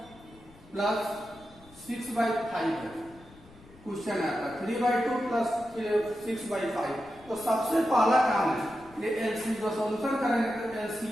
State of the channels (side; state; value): left; noise; rumble, 24 dB below the sound